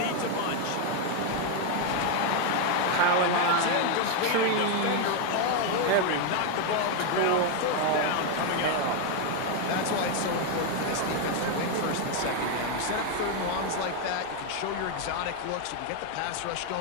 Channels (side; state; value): both; different; correlation 0.01